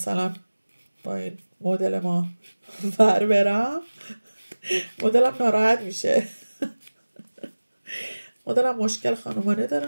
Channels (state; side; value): inverted; both; correlation -1.00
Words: با این مدل ما ور برم، مدلم ناراحت میشه مدلم مشکل خانمانه